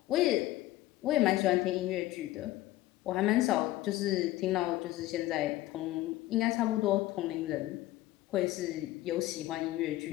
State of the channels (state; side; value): quieter; right; 16.3 dB